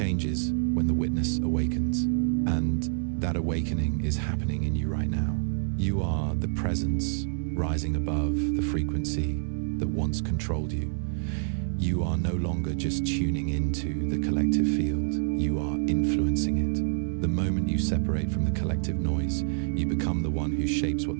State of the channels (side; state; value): left; silent; digital silence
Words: when the witness awakens, and that awakening is happening in you right now. You are the presence rising above the frequency that once controlled you. You are no longer just tuning into the collective field, you are influencing it. The moment you separate from the collective noise, you become the one who shapes what